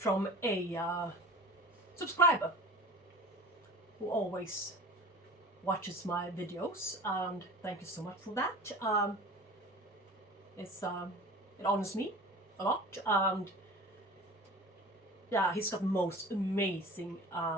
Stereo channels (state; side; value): normal; both; correlation 0.39